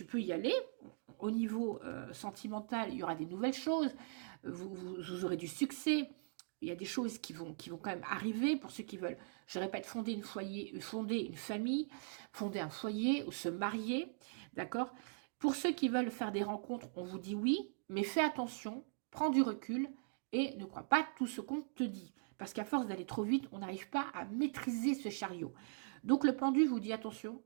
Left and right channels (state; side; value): silent; left; digital silence